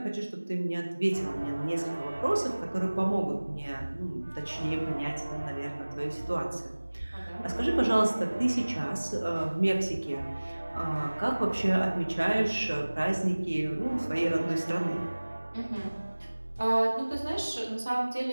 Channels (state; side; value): inverted; both; correlation -1.00